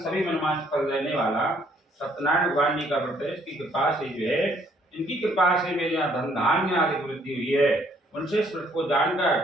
सभी मनमांस फल देने वाला सत्यनारायण भगवान जी का व्रत है। इसकी कृपा से जो है, इनकी कृपा से मेरे यहाँ धन धान्य आदि वृद्धि हुई है। उनसे इस व्रत को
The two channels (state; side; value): normal; both; correlation 0.65